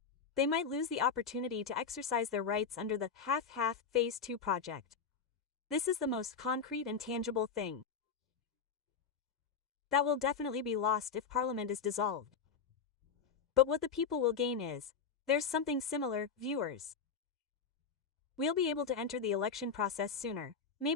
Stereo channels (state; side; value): quieter; right; 5.9 dB